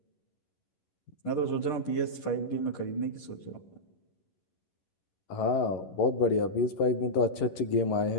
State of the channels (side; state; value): right; late; 11 ms